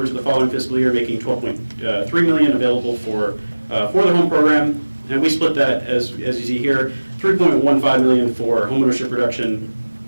to the following fiscal year, making $12.3 million available for the home program. And we split that, as you see here, $3.15 million for homeownership reduction,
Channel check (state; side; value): inverted; both; correlation -1.00